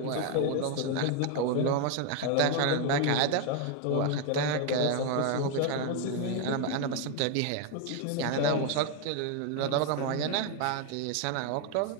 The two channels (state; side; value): different; both; correlation 0.01